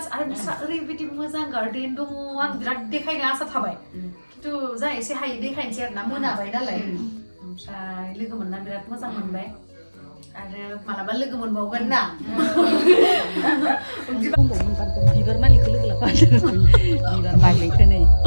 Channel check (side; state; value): both; inverted; correlation -1.00